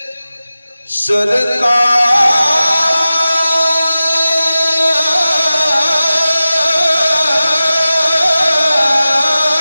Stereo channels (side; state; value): both; inverted; correlation -0.95